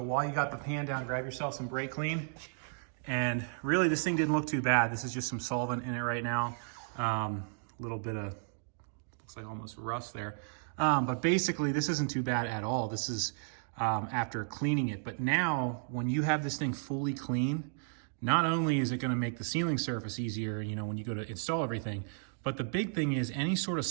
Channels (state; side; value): silent; left; digital silence